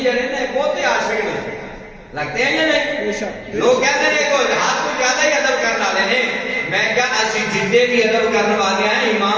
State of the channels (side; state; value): both; identical; correlation 1.00